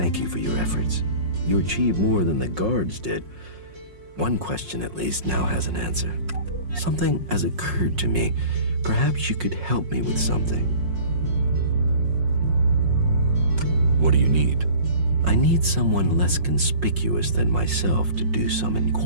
you for your efforts. You achieved more than the guards did. One question, at least, now has an answer. Something has occurred to me. Perhaps you could help me with something. What do you need? I need someone less conspicuous than myself to do some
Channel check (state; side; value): late; left; 5.5 ms